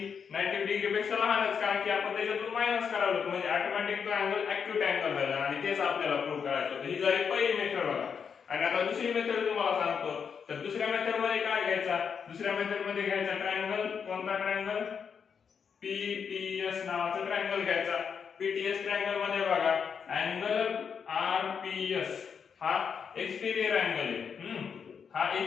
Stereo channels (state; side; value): quieter; right; 6.6 dB